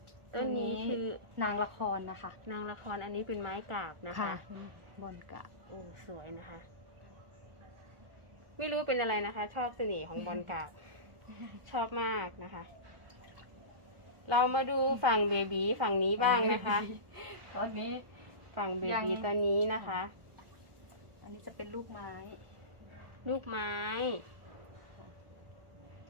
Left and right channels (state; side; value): late; left; 1.4 ms